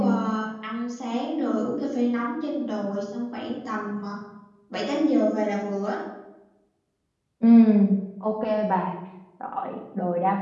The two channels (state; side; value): identical; both; correlation 1.00